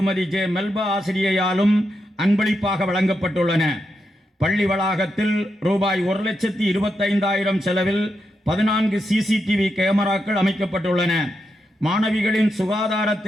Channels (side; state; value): both; normal; correlation 0.85